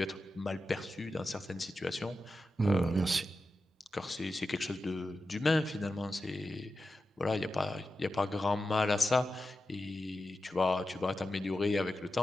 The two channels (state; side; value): normal; both; correlation 0.91